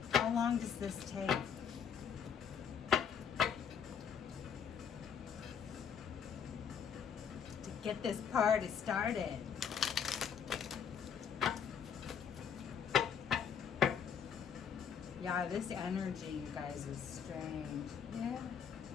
How long does this take? To get this party started. Yeah, this energy, you guys, is strange. Yeah.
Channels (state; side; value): quieter; right; 7.4 dB